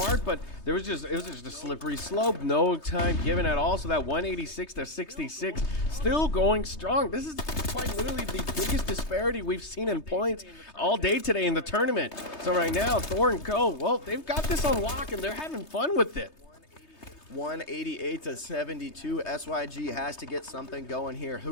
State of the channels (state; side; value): late; right; 3.2 ms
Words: but it was just a slippery slope. No time given at all. So that 186-66 still going strong. This is quite literally the biggest disparity we've seen in points all day today in the tournament. So right now, Thor and Co, well, they've got this on lock, and they're having fun with it. 188-72. SYG has to get something going here.